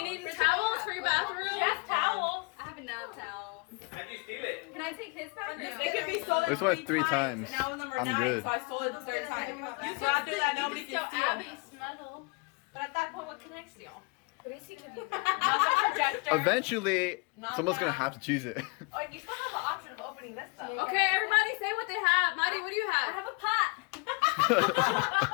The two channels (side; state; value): right; quieter; 31.1 dB